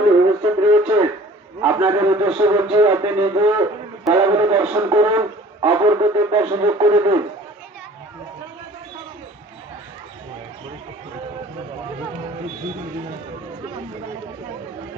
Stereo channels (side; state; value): both; normal; correlation 0.50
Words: উপস্থিত রয়েছে, আপনাদের উদ্দেশ্য বলছি, আপনি নিজে খেলাগুলো দর্শন করুন, অপরকে দেখার সুযোগ করে দিন।